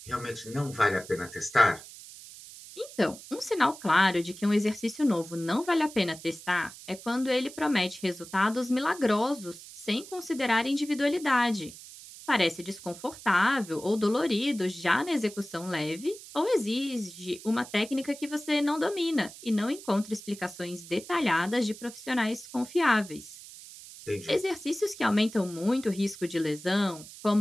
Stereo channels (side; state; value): right; noise; hiss, 16 dB below the sound